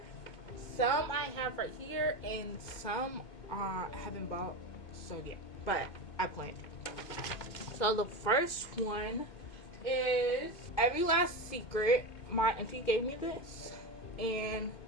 Some I have right here, and some I haven't bought yet, but I plan to. So the first one is Every Last Secret. My auntie gave me this and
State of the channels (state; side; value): late; right; 2.2 ms